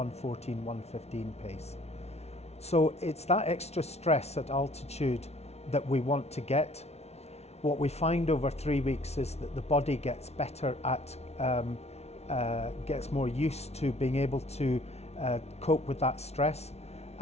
115 pace. So it's that extra stress at altitude that we want to get. What we find over 3 weeks is that the body gets better at, gets more used to being able to cope with that stress,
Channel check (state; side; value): late; right; 0.31 ms